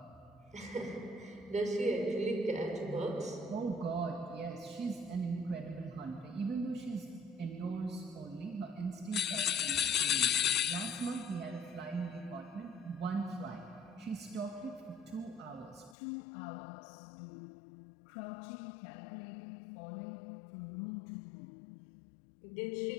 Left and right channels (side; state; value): right; drops out; at 16.0 s